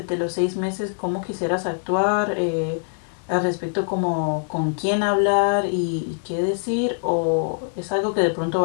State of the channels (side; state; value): right; silent; 63 dB below the other